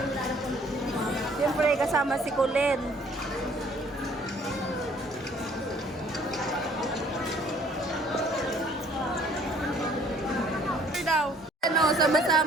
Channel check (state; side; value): normal; both; correlation 0.59